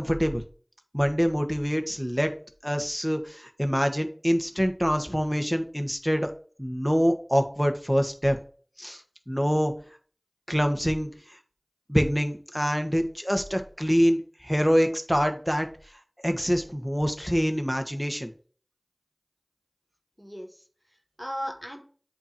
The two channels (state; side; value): identical; both; correlation 1.00